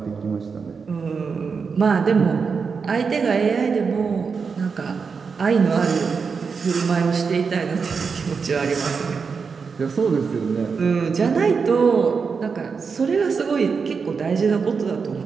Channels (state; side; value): quieter; left; 5.4 dB